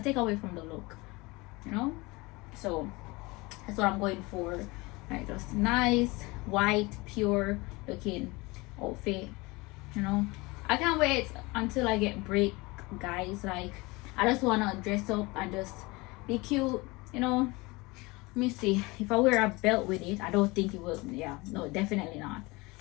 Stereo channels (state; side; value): quieter; right; 23.8 dB